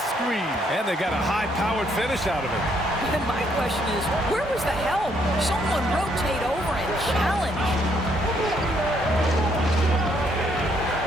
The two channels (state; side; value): normal; both; correlation 0.70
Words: screen. And they got a high-powered finish out of it. And my question is, where was the help? Someone rotate over and challenge.